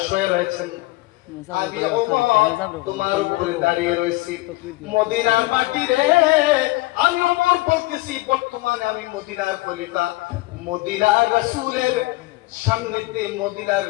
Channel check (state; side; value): quieter; right; 20.5 dB